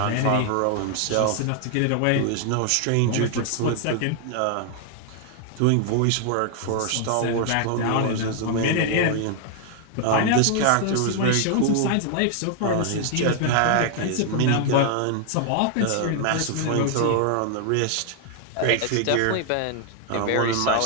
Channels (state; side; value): different; both; correlation 0.00